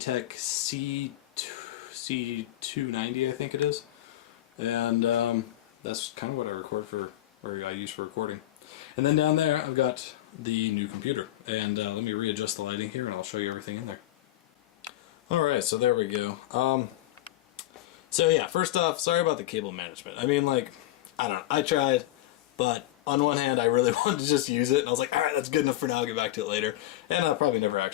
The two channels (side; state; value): right; quieter; 14.6 dB